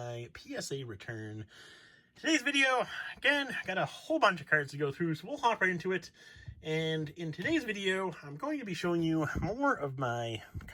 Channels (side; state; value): both; identical; correlation 1.00